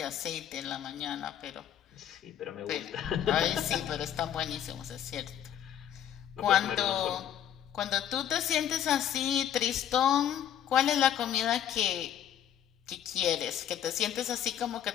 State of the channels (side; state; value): right; quieter; 10.0 dB